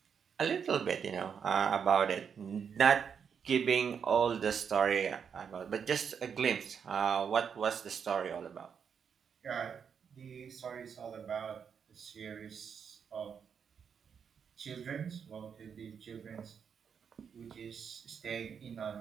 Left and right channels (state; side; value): quieter; left; 7.0 dB